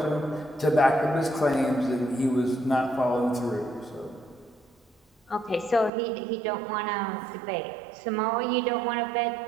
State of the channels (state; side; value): drops out; left; at 5.9 s